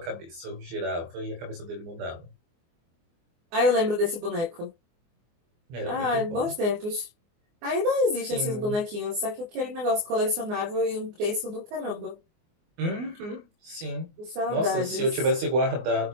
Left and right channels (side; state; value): left; late; 24 ms